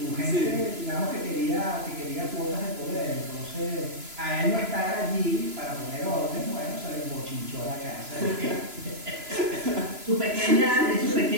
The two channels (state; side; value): late; left; 3.0 ms